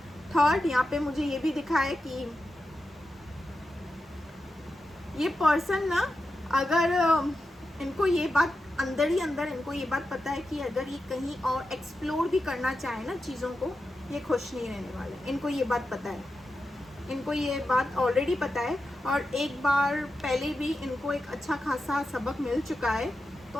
थर्ड, यहाँ पे मुझे ये भी दिखा है कि ये पर्सन ना, अगर इनको ये बात अंदर ही अंदर इनको ये बात पता है कि अगर ये कहीं और एक्सप्लोर भी करना चाहे ना चीज़ों को, ये खुश नहीं रहने वाले। इनको ये बात पता है, इनको ये बात ऑलरेडी पता है और एक बार पहले भी इनको एक अच्छा खासा सबक मिल चुका है।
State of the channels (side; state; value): both; normal; correlation 0.90